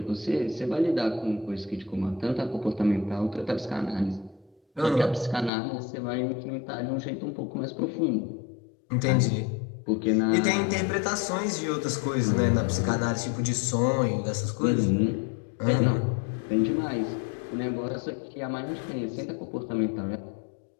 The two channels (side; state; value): right; drops out; at 5.5 s